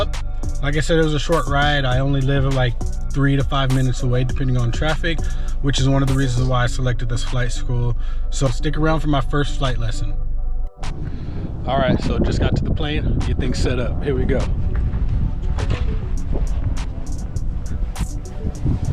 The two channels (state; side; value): identical; both; correlation 1.00